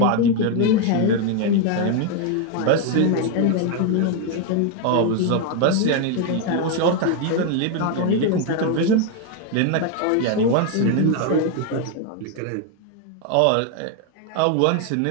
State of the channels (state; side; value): different; both; correlation 0.01